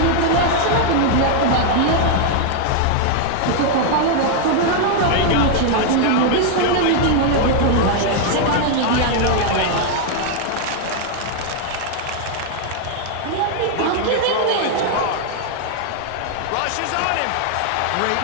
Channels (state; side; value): different; both; correlation 0.00